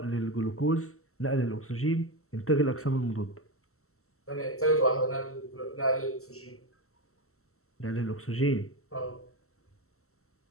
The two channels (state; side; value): late; right; 0.63 ms